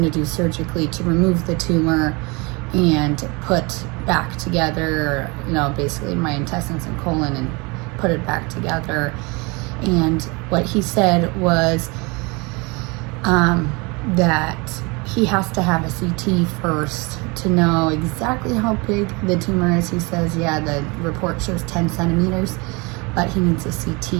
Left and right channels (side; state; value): left; quieter; 27.7 dB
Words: to do surgically to remove the tumor and put back together, basically my intestines and colon, and put it back together. And what he said was that he has to have a CT first to know exactly how big the tumor is. He says, yeah, the report shows 10 centimeters, but he needs a